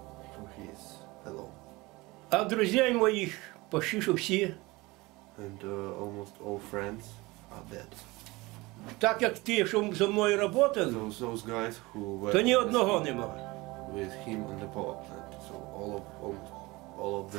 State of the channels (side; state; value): left; quieter; 22.3 dB